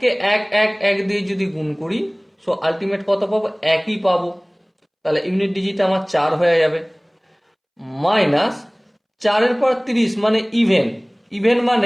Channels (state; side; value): identical; both; correlation 1.00